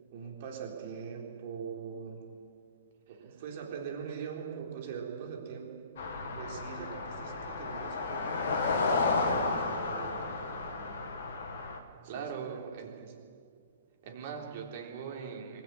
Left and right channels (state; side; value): inverted; both; correlation -0.50